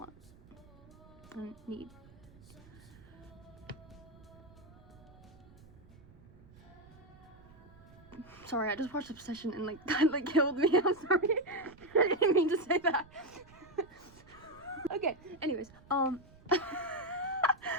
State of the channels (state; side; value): noise; right; rumble, 23 dB below the sound